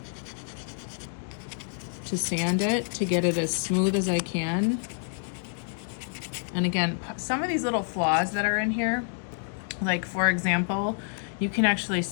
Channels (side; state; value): right; silent; digital silence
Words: to sand it to get it as smooth as I can. And again, some of these little flaws that are in here, like for example, you can actually